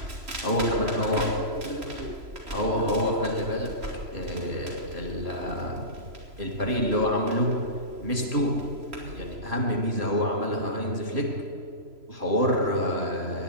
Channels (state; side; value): late; left; 3.0 ms